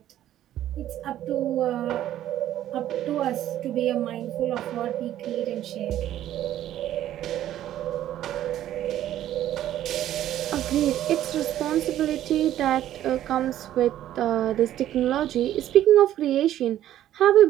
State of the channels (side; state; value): left; quieter; 12.4 dB